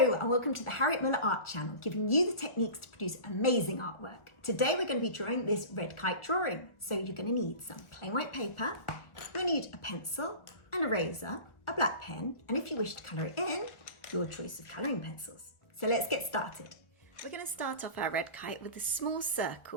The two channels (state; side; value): late; right; 1.4 ms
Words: and welcome to the Harriet Muller Art Channel, giving you the techniques to produce amazing artwork. Today we're going to be drawing this red kite drawing. So you're going to need some plain white paper, you'll need a pencil, an eraser, a black pen, and if you wish to colour it in, your choice of colouring pencils. So let's get started. We're going to start off our red kite with a small